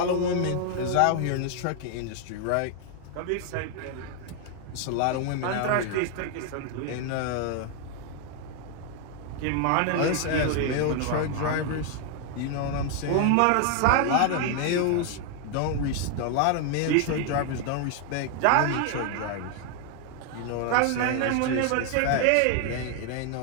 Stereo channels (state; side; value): different; both; correlation 0.00